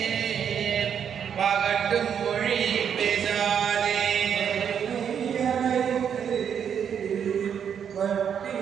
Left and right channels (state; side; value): quieter; left; 8.0 dB